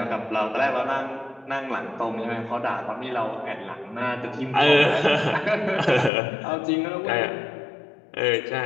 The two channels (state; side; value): drops out; right; at 6.1 s